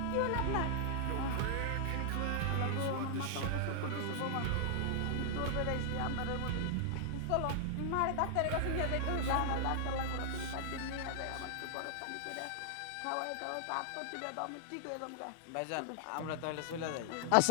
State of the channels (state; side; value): different; both; correlation 0.00